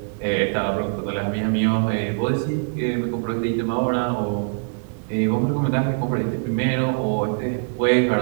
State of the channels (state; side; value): silent; left; digital silence